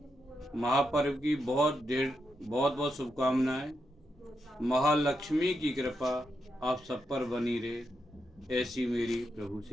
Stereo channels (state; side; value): normal; both; correlation 0.84